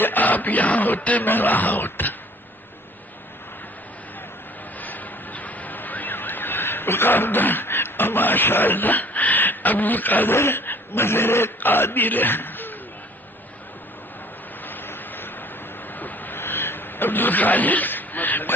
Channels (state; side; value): normal; both; correlation 0.53